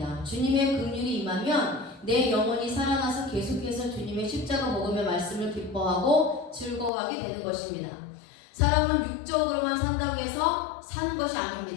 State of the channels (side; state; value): right; drops out; at 6.9 s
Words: 주님의 긍휼이 임하면 내 영혼이 살아나서 계속해서 주님의 십자가 복음의 말씀을 기뻐하고 즐거워하게 되는 것입니다. 사람은 육적으로만 산다고 해서 사는 것이